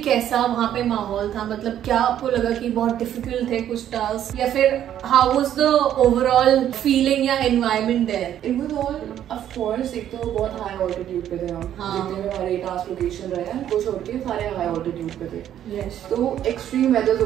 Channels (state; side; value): quieter; left; 10.8 dB